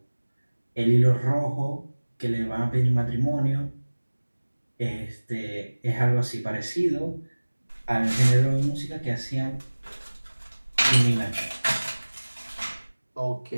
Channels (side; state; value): both; inverted; correlation -1.00